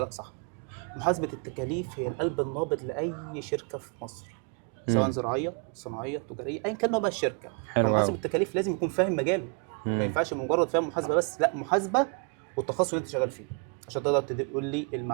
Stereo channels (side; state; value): left; quieter; 37.2 dB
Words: صح. محاسبه التكاليف هي القلب النابض لاي شركه في مصر، سواء مم. زراعيه صناعيه تجاريه ايا كان نوع بقى الشركه. حلو فمحاسب أوي. التكاليف لازم يكون فاهم مجاله، ما مم. ينفعش مجرد فاهم محاسبه بس، لا، محاسبه والتخصص اللي انت شغال فيه، عشان تقدر تقول لي